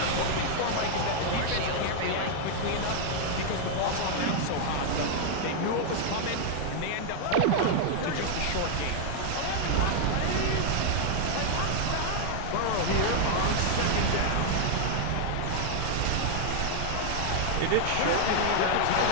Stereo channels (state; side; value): different; both; correlation 0.00